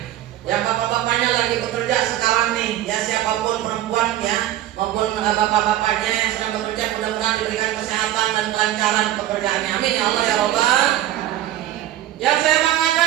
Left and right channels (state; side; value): quieter; left; 13.1 dB